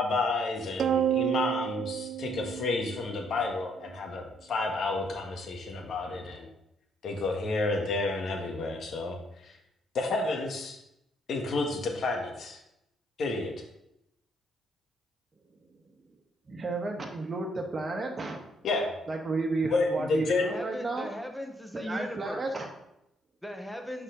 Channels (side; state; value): both; normal; correlation 0.69